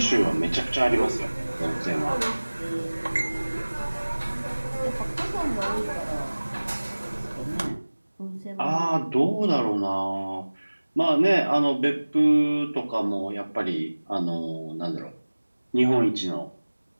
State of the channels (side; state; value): both; inverted; correlation -1.00